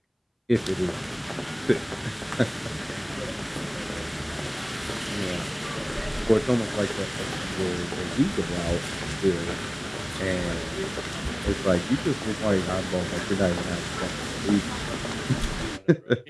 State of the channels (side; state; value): both; identical; correlation 1.00